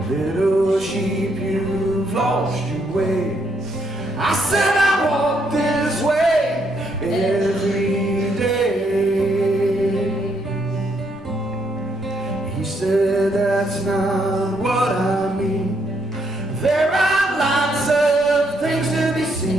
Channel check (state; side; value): normal; both; correlation 0.74